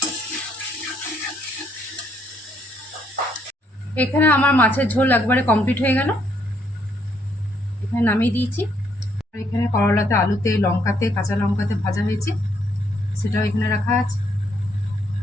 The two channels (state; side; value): normal; both; correlation 0.71